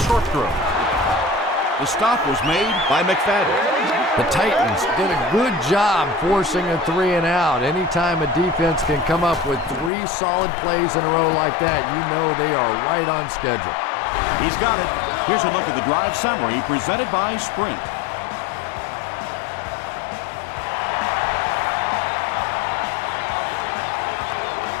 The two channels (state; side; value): drops out; right; at 9.9 s